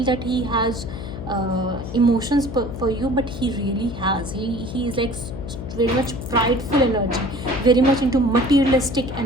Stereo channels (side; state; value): left; noise; hum, 9 dB below the sound